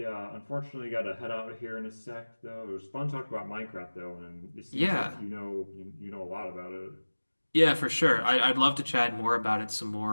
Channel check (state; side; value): inverted; both; correlation -1.00